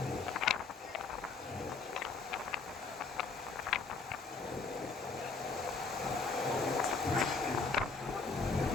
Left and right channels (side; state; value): right; quieter; 4.4 dB